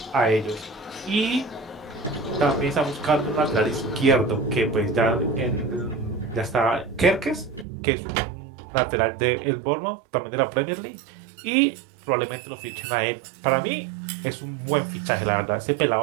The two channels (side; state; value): left; drops out; at 7.7 s